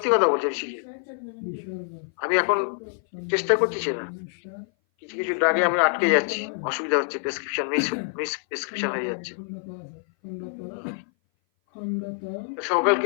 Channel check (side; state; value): right; silent; 58 dB below the other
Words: কথা বলছি, শিখে আমি এখন চেষ্টা করছি না। কিছু কিছু ড্রাগে আমি আটকে যাচ্ছি, অসুবিধা হচ্ছে, প্রেসক্রিপশন মিস প্রেসক্রিপশন হয়ে যাচ্ছে।